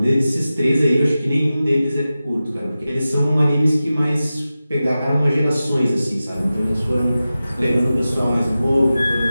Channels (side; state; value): both; inverted; correlation -0.94